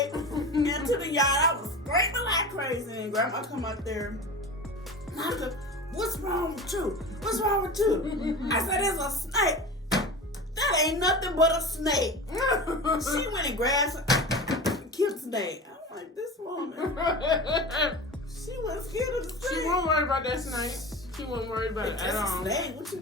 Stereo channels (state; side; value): normal; both; correlation 0.31